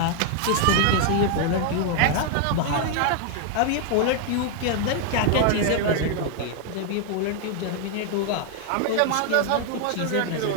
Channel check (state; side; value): different; both; correlation 0.00